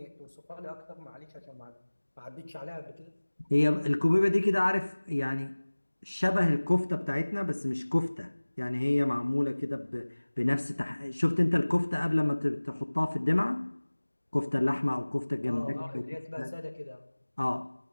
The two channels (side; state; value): both; inverted; correlation -1.00